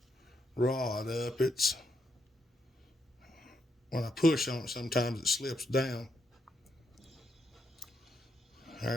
rod up. It's when I push on it, sometimes it slips down.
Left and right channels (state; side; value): normal; both; correlation 0.79